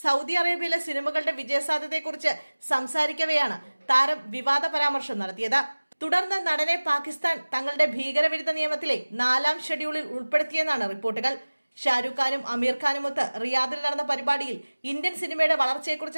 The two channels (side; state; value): both; inverted; correlation -1.00